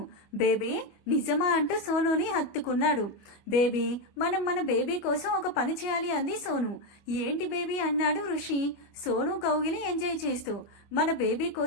బేబీ, నిజమా అంటూ సోనుని హత్తుకున్నాడు. బేబీ, మనం మన బేబీ కోసం ఒక పని చేయాలి అంది సోను. ఏంటి బేబీ అన్నాడు ఋషి సోను కౌగిలి ఎంజాయ్ చేస్తూ. మన బేబీ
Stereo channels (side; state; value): right; late; 25 ms